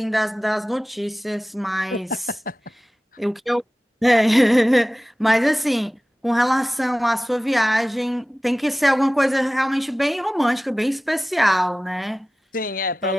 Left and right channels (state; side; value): normal; both; correlation 0.96